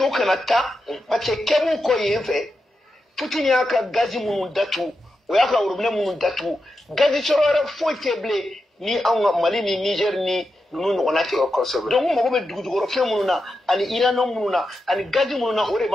vous Canada, parce que quand vous avez fait, Poutine y a un gaz moun datu, ou y a un robinet moun datu, gaz sur le faux teblé, ni en Mali, ni Niger, ni nous on a tiré donc on m'a dit du reflet monuna ani irano monuna ani gaji monuna ore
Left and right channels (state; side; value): normal; both; correlation 0.88